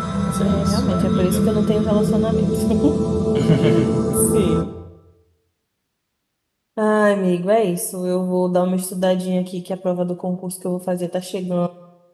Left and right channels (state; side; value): identical; both; correlation 1.00